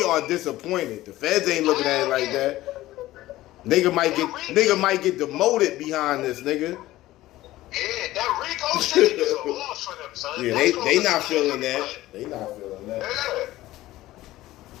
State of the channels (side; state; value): right; quieter; 16.3 dB